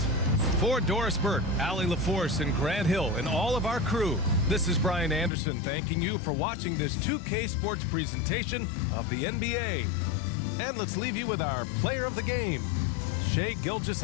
For Doris Burke, Allie LaForce, and Grant Hill, and all of our crew, this is Brian Anderson thanking you for watching this 2K Sports presentation of the NBA. And let's leave you with our player of the game, Shai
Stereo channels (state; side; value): drops out; right; at 5.3 s